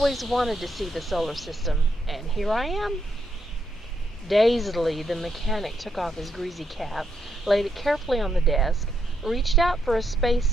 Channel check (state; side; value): normal; both; correlation 0.78